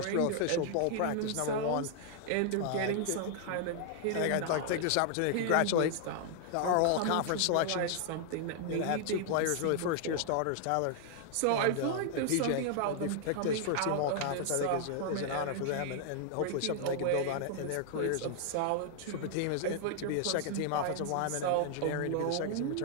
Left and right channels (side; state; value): both; different; correlation 0.00